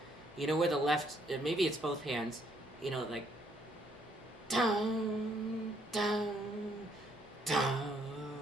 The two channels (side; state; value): both; normal; correlation 0.69